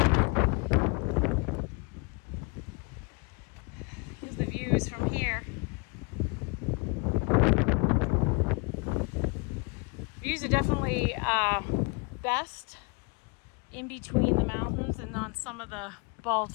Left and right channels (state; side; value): quieter; right; 30.9 dB